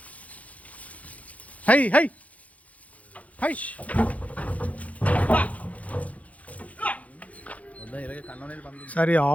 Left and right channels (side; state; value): right; late; 0.068 ms